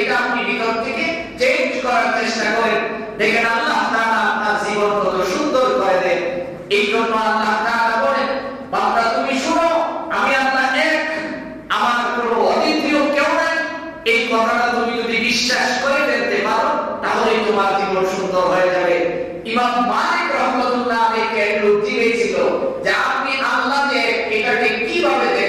এটা আপনি ভিতর থেকে চেঞ্জ করার চেষ্টা করেন, দেখেন আল্লাহ তাআলা আপনার জীবন কত সুন্দর করে এই জন্য আল্লাহ তাআলা বলেন, বান্দা তুমি শুনো, আমি আল্লাহ এক, আমার কোনো অদ্বিতীয় কেউ নাই। এই কথাটা তুমি যদি বিশ্বাস করে ফেলতে পারো তাহলে তোমার জীবন সুন্দর হয়ে যাবে। ইমাম মালিক রাহমাতুল্লাহ আলাইহি একটু জিজ্ঞেস ছিল যে আপনি আল্লাহ যে এটাকে কিভাবে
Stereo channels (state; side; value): identical; both; correlation 1.00